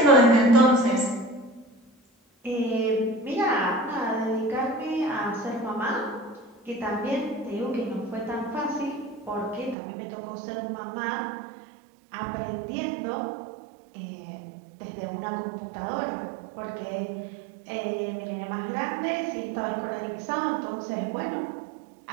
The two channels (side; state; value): left; drops out; at 9.8 s